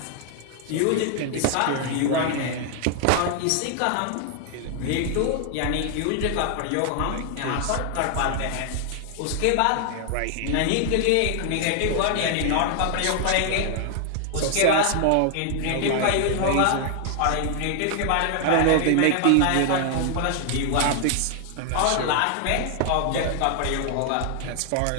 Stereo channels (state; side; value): different; both; correlation 0.00